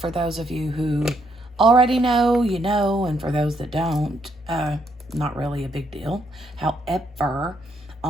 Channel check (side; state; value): both; normal; correlation 0.74